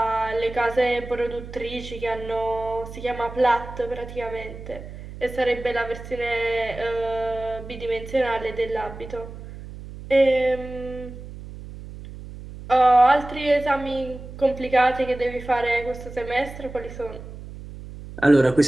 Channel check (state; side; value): noise; right; hum, 13 dB below the sound